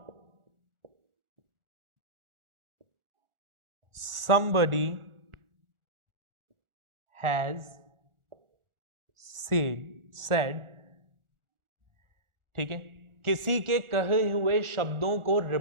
somebody has said, ठीक है। किसी के कहे हुए शब्दों को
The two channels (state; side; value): late; left; 1.4 ms